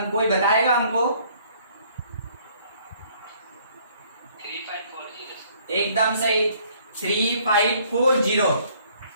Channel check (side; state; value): both; inverted; correlation -0.61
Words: कोई बताएगा हमको? 3540। एकदम सही, 3540,